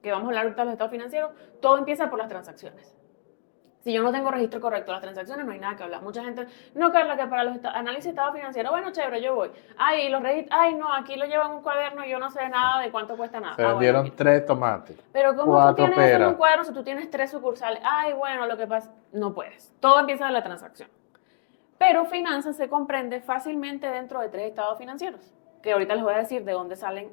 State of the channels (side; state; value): right; silent; digital silence